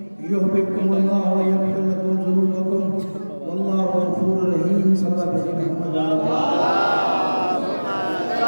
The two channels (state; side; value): inverted; both; correlation -1.00